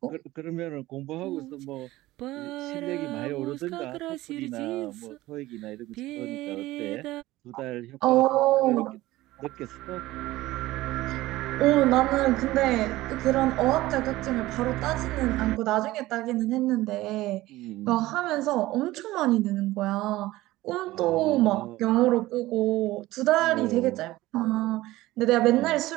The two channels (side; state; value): left; quieter; 17.5 dB